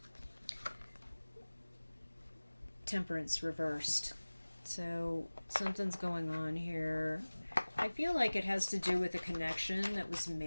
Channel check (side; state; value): both; inverted; correlation -1.00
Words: Temperance reversed. So something's going on here. I feel like it has to do with a connection that was